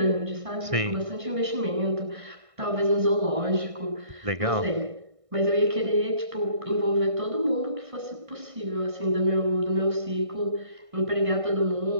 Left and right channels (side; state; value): left; late; 1.6 ms